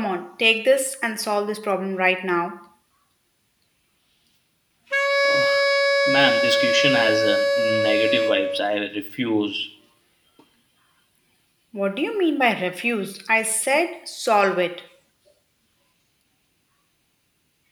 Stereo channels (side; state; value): both; identical; correlation 1.00